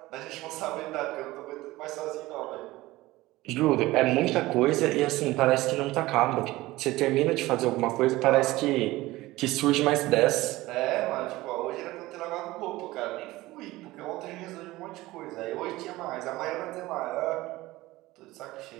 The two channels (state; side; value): quieter; left; 18.6 dB